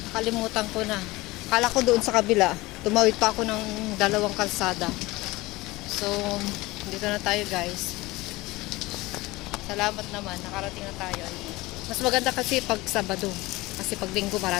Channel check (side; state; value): right; quieter; 20.6 dB